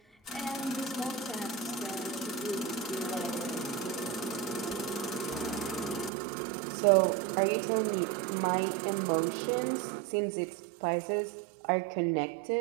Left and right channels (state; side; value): drops out; left; at 6.1 s